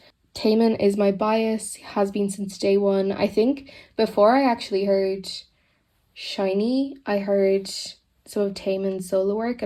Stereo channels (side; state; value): both; identical; correlation 1.00